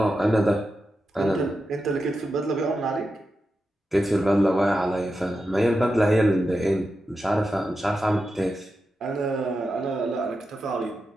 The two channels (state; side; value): normal; both; correlation 0.89